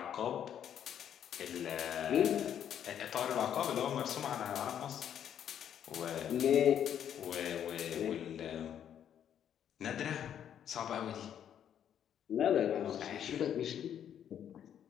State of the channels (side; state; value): right; quieter; 9.5 dB